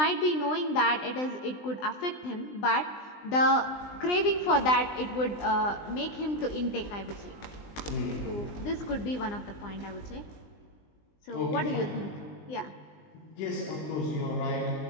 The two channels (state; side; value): late; right; 20 ms